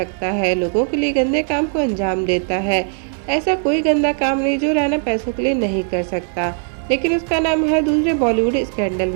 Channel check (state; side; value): silent; left; 55 dB below the other